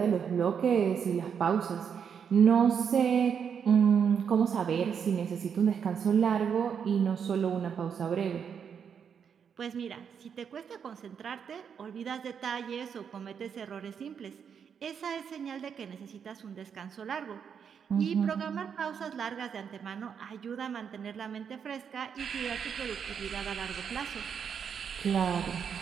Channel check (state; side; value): quieter; left; 7.3 dB